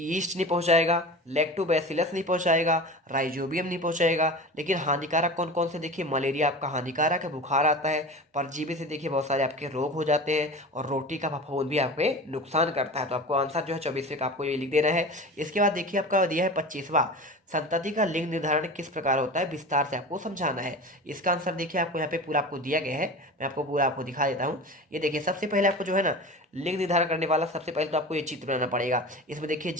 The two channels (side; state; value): both; normal; correlation 0.33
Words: नहीं पहुंचाएगा, लैक्टोबैसिलस नहीं पहुंचाएगा, राइजोबियम नहीं पहुंचाएगा। लेकिन हानिकारक कौन कौन से, देखिए मलेरिया आपका हानिकारक है, बुखार आता है, परजीवी से देखिए बहुत सारे आपके रोग हो जाते हैं, और रोटी का फफूंद भी आपके नुकसान करता है। तो आपको आंसर जो है 24वें का आपको ये लिख देना है। इसके बाद देखिए आपका दिया है 25वां, संतति का लिंग निर्धारण किस प्रकार होता है, विस्तार से आपको समझाना है। इसका आंसर देखिए आपको यहाँ पे पूरा आपको दिया गया है, मैं आपको पूरा आपको दिखा देता हूँ। ये देखिए सबसे पहले आपको जो है ना लिंग निर्धारण करने वाला सबसे पहले तो आपको ये चित्र बनाना पड़ेगा। इसमें देखिए